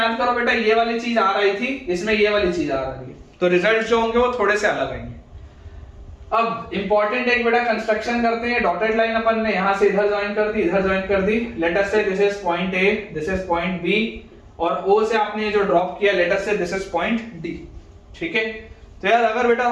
करो बेटा, ये वाली चीज आ रही थी, इसमें ये वाली चीज आ रही है, तो रिजल्ट जो होंगे वो थोड़े से अलग आएंगे। अब इंपॉर्टेंट एक बेटा कंस्ट्रक्शन करते हैं। डॉटेड लाइन अपन ने यहां से इधर ज्वाइन कर दी, इधर ज्वाइन कर दी। Let us say this is point A, this is point B, और ओ से आपने जो ड्रॉप किया, late us say this is point D. ठीक है, तो यार अगर बेटा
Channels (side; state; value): both; identical; correlation 1.00